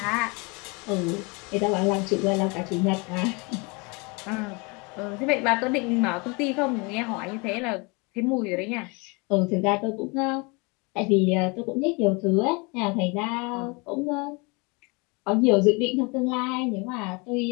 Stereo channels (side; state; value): right; quieter; 29.2 dB